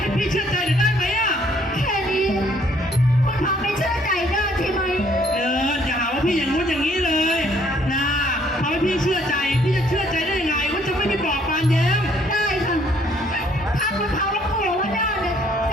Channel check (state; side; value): normal; both; correlation 0.64